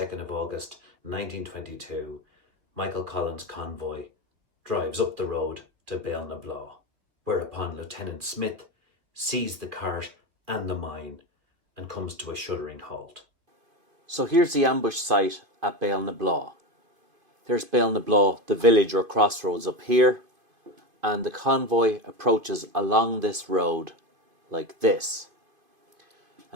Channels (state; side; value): late; left; 2.5 ms